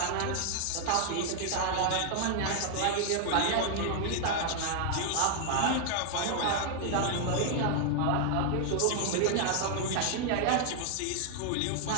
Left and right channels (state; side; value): different; both; correlation 0.00